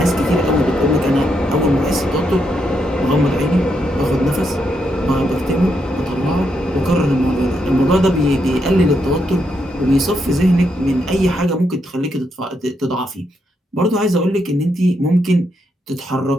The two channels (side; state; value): both; normal; correlation 0.80